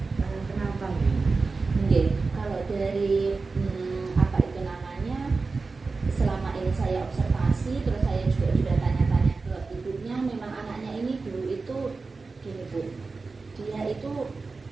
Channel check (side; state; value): left; quieter; 4.1 dB